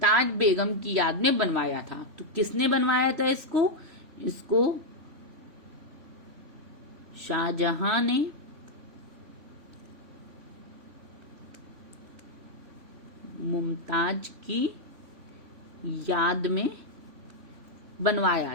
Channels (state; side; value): late; left; 3.1 ms